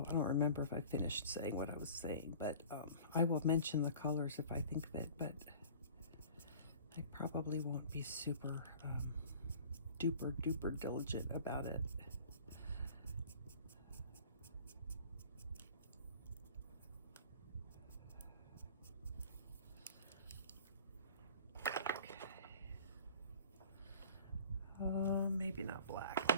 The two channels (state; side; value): inverted; both; correlation -0.44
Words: I don't remember if I finished saying what I was saying, but I will mention the colors if I think of it, but I probably won't be super duper duper diligent about it. Maybe not black,